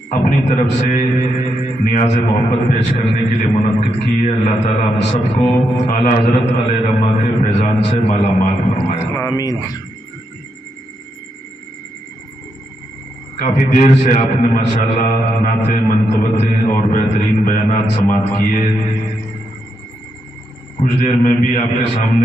اپنی طرف سے نیاز محبت پیش کرنے کے لیے منعقد کی ہے اللہ تعالیٰ ہم سب کو اعلیٰ حضرت علیہ رحمہ کے فیضان سے مالا مال فرمائے آمین کافی دیر سے آپ نے ماشاءاللہ نعتیں منقبتیں اور بہترین بیانات سماعت کیے کچھ دیر میں بھی آپ کے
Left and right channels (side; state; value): both; normal; correlation 0.82